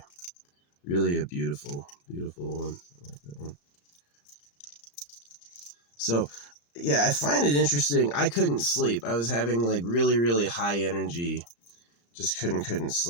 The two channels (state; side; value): late; right; 35 ms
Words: Really a beautiful, beautiful one. I like that one. So, yeah, I find it interesting. I couldn't sleep. I was having like really, really high energy. Just couldn't